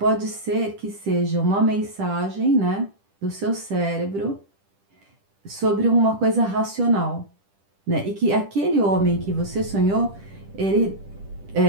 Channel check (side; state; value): left; late; 10 ms